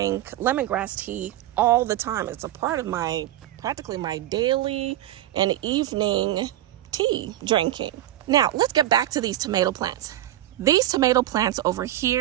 lemongrass tea all the time. It's a part of practically my daily and evening tea drinking. Now, let's get back to these tomato plants. These tomato plants over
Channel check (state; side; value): quieter; left; 13.9 dB